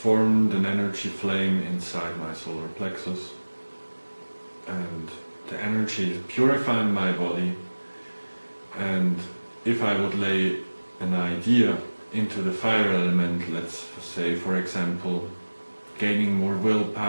an energy flame inside my solar plexus, and the energy is purifying my body. And if I would lay an idea into the fire element, let's say for example gaining more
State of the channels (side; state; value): both; inverted; correlation -1.00